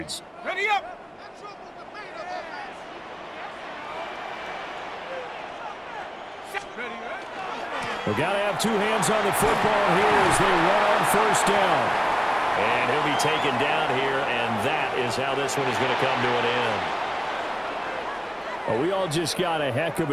Ready up. We've got to have 2 hands on the football here as they run on first down. And he'll be taken down here, and that is how this one is going to come to an end. Well, we all just got a heck of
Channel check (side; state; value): both; identical; correlation 1.00